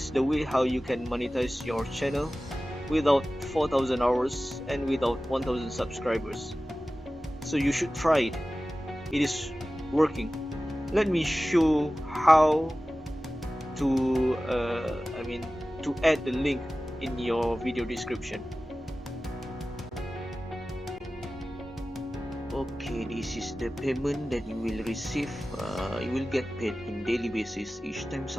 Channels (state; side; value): normal; both; correlation 0.96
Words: the way how you can monetize your channel without 4,000 hours and without 1,000 subscribers. So you should try it. It is working. Let me show how to to add the link in your video description. Okay, this is the payment that you will receive. You will get paid in daily basis each time